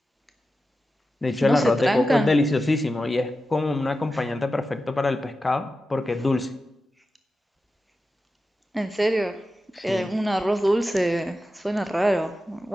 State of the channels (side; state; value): both; normal; correlation 0.92